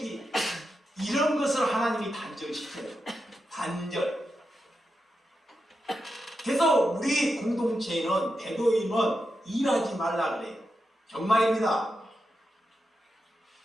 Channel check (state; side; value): normal; both; correlation 0.88